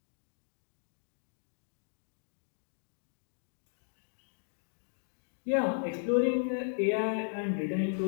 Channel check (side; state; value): right; silent; digital silence